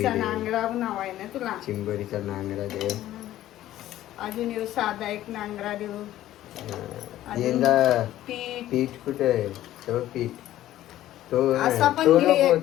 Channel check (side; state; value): right; quieter; 13.7 dB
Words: दे. नांगरा नाव आहे ना तुला. चिंबोरीचा नांगरा दे. अजून येऊ साधा एक नांगरा देऊ. अजून यंदा पीठ पीठ कुठे आहे? तो पीठ तो असा पण तो घे. नको